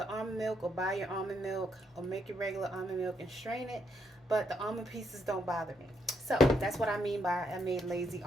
almond milk or buy your almond milk or make your regular almond milk and strain it. But the almond pieces don't bother me. So that's what I mean by I made lazy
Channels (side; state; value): both; normal; correlation 0.76